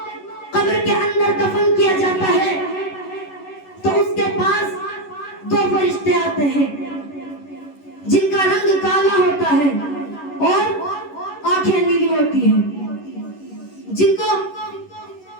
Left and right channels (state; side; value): late; right; 11 ms